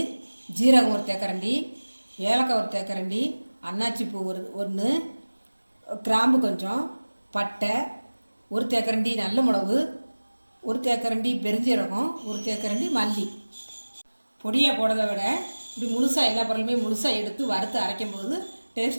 ஜீரகம் 1 தேக்கரண்டி, ஏலக்காய் 1 தேக்கரண்டி, அன்னாச்சி பூ 1, கிராம்பு கொஞ்சம், பட்டை 1 தேக்கரண்டி, நல்ல மிளகு 1 தேக்கரண்டி, பெருஞ்சீரகம் 1 தேக்கரண்டி, மல்லி. பொடியாக போடுறத விட இப்படி முழுசாக எல்லா பொருளுமே முழுசாக எடுத்து வறுத்து அரைக்கும் போது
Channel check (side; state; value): both; inverted; correlation -1.00